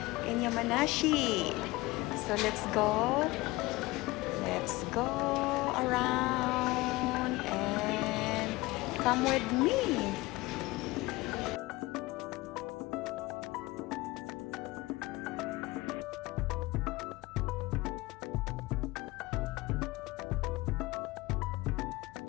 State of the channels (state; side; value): quieter; right; 20.9 dB